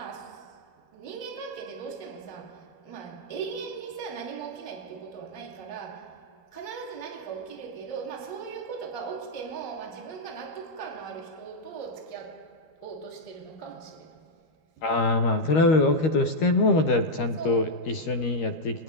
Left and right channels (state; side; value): late; right; 13 ms